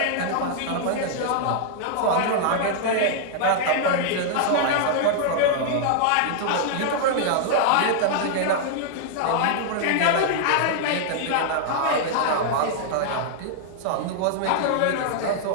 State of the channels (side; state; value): both; different; correlation -0.01